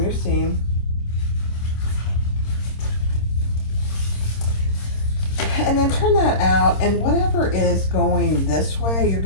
your seam. And then turn that out, and whatever is going this way, you're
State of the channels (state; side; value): late; right; 26 ms